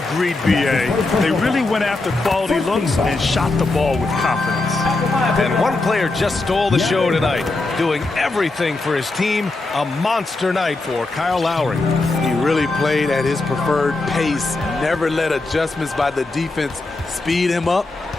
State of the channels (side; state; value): right; quieter; 3.2 dB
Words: Agreed, B.A. They really went after quality looks and shot the ball with confidence. And one player just stole the show tonight, doing everything for his team. A monster night for Kyle Lowry. He really played at his preferred pace. Never let adjustments by the defense speed him up